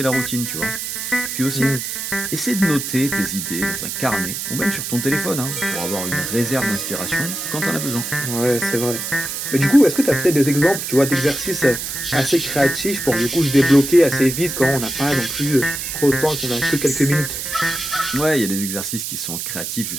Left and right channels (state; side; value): noise; right; hiss, 5 dB below the sound